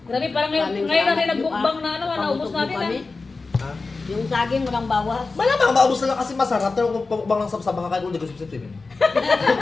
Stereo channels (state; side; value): quieter; right; 3.9 dB